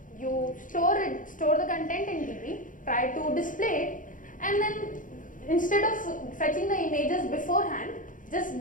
You store the content in DB, try to display it, and then instead of fetching the images beforehand, just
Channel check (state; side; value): late; right; 0.38 ms